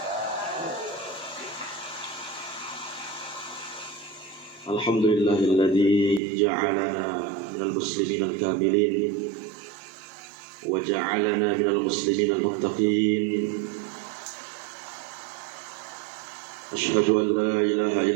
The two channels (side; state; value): left; drops out; at 6.2 s